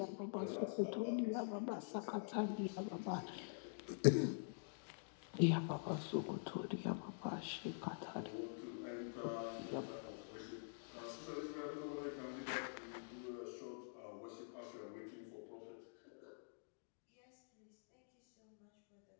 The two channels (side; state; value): right; silent; digital silence